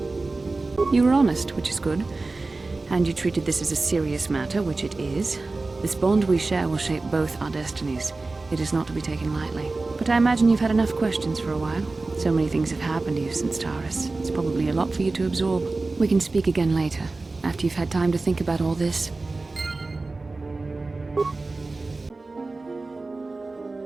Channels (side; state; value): left; quieter; 3.5 dB